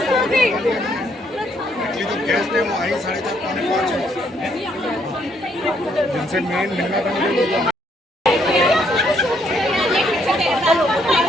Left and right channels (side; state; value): both; normal; correlation 0.71